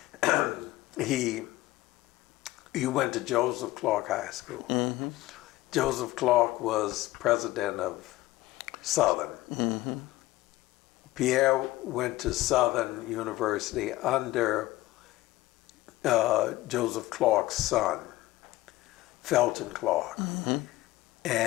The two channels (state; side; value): quieter; right; 17.5 dB